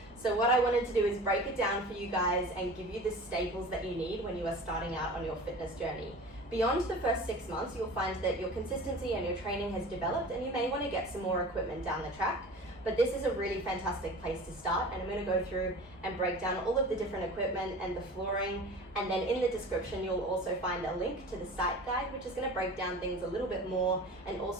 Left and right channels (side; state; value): both; normal; correlation 0.38